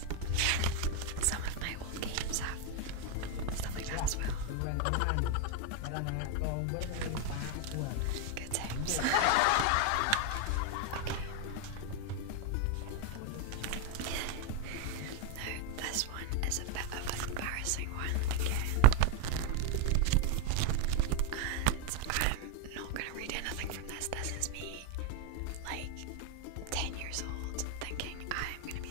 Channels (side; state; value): both; different; correlation 0.02